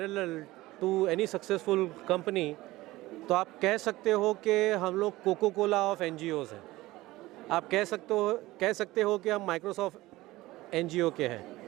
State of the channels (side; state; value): left; quieter; 18.4 dB